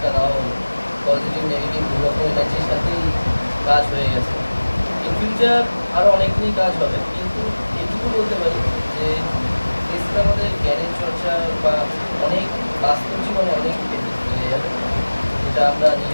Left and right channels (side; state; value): both; inverted; correlation -1.00